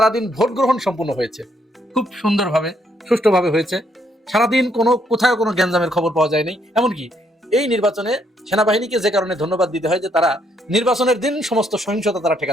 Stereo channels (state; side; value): normal; both; correlation 0.72